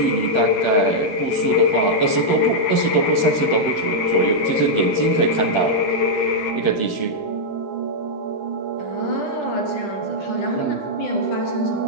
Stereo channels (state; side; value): late; right; 9.5 ms